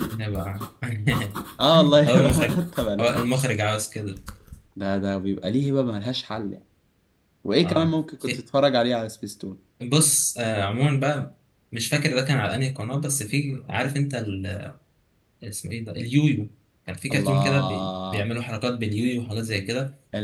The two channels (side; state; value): both; identical; correlation 1.00